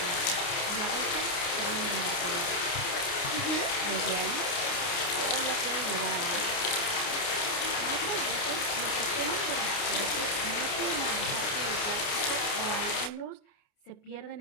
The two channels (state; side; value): late; right; 29 ms